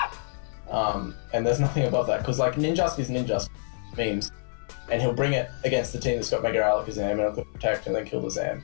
And there's nothing above that, because Ninjask is Ninjask memes. And he'll bring it against the team that's got Mega Alakazam and it'll protect and then kill the Zam,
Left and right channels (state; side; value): silent; right; 60 dB below the other